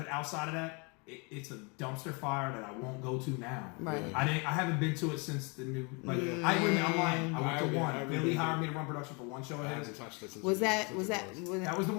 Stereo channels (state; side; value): quieter; right; 31.6 dB